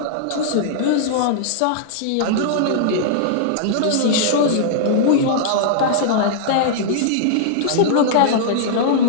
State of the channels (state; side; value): different; both; correlation -0.02